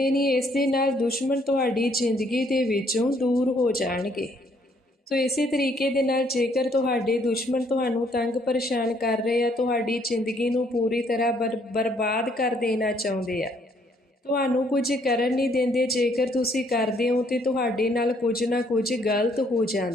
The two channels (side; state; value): both; normal; correlation 0.67